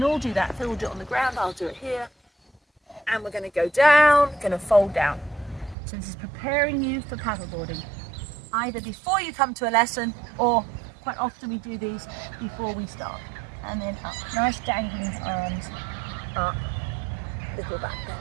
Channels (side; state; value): left; drops out; at 5.8 s